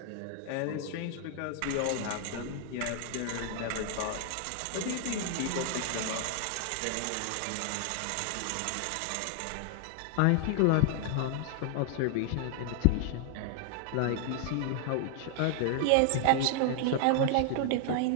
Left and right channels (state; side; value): different; both; correlation 0.00